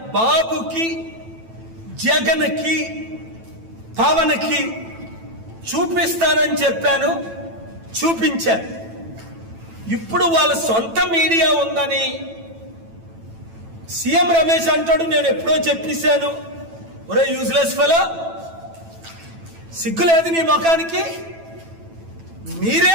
బాబుకి, జగన్కి, పవన్కి చూపిస్తానని చెప్పాను, చూపించాను. ఇప్పుడు వాళ్ళ సొంత మీడియా ఉందని సీఎం రమేష్ అంటాడు. నేను ఎప్పుడో చెప్పేశాను, ఒరే యూజ్లెస్ ఫెలో, సిగ్గులేదు నీ ముఖానికి?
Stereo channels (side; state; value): left; late; 9.0 ms